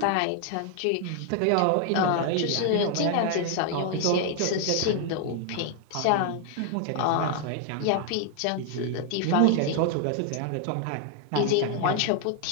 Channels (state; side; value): different; both; correlation 0.00